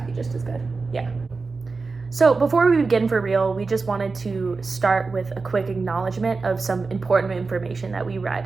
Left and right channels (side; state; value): left; quieter; 4.2 dB